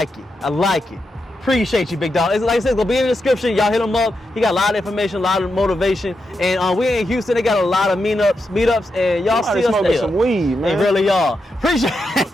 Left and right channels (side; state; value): both; normal; correlation 0.86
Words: it. Appreciate you, big dog. It's, like I said, it's gonna be in the description. Y'all hit him up. He got a lot of information, a lot of motivation. And we in Houston, they got a lot of meetups, and y'all see us there. Some weed, man. They really are. Appreciate